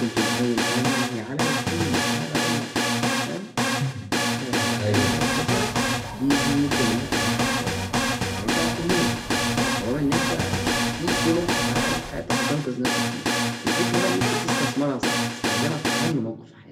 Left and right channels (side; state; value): both; identical; correlation 1.00